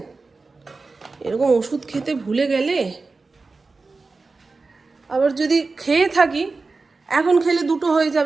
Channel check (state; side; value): quieter; left; 3.9 dB